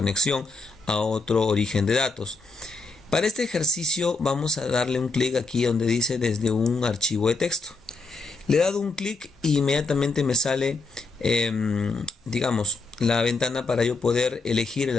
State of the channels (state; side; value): quieter; right; 3.9 dB